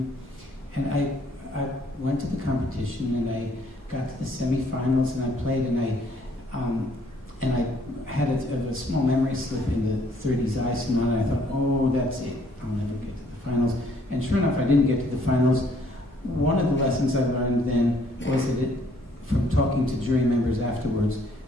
And I went to the competition, and I got to the semifinals, and I played, and I had a small memory slip in the 30s Eisenman, and I thought, oh, that's it, I'll never get to the finals. And sure enough, I didn't get to the finals. One of the lessons I learned then was that from talking to jury members afterwards,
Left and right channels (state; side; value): normal; both; correlation 0.64